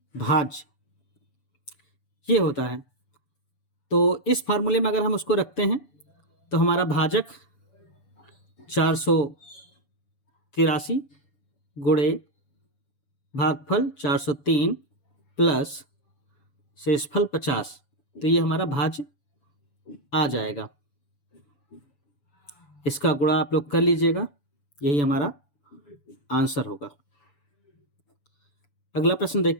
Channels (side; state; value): right; late; 6.9 ms